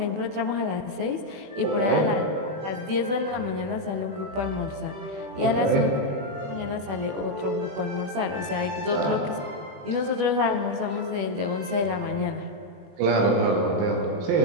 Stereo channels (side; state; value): left; late; 21 ms